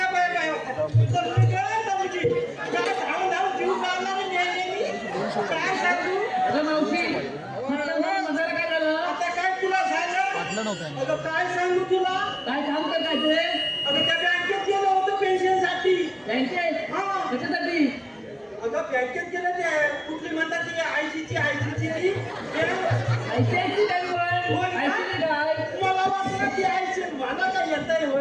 काय सांगू तुला, काय काम करायचं? अगं त्या बँकेत गेलो होतो पेन्शनसाठी. बँकेत? हा. कशासाठी? अगं बँकेत गेलं ते कुठली म्हणतात ते आयसीची मला वाटलं की आयसी मला काय येतंय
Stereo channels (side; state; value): both; identical; correlation 1.00